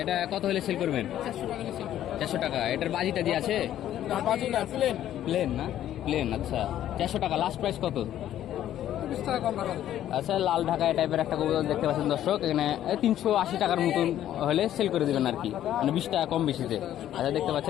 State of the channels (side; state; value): right; quieter; 11.8 dB